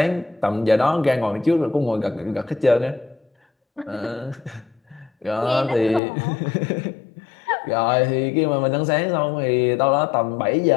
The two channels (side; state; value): right; drops out; at 6.0 s